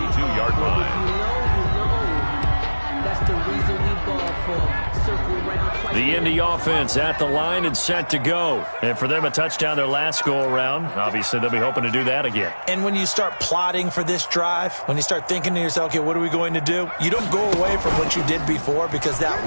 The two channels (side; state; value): both; inverted; correlation -1.00